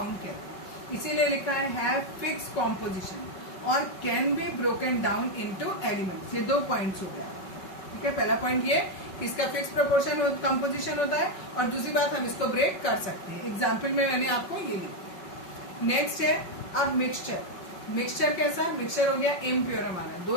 कहते हैं। इसीलिए लिखा है हैव फिक्स कॉम्पोजिशन और can be broken down into elements. ये 2 पॉइंट्स हो गया, ठीक है। पहला पॉइंट ये कि इसका फिक्स प्रपोर्शन कंपोजिशन होता है, और दूसरी बात हम इसको ब्रेक कर सकते हैं। एग्जाम्पल में मैंने आपको ये लिखा। नेक्स्ट है अब मिक्सचर। मिक्सचर कैसा? मिक्सचर हो गया इम्प्योर। हमारा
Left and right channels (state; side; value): late; right; 5.3 ms